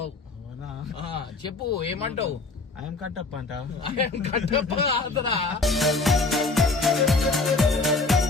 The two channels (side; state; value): right; quieter; 3.5 dB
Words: చెప్పు ఏమంటావు? ఐఎమ్ కట్టప్ప అంట. కట్టప్ప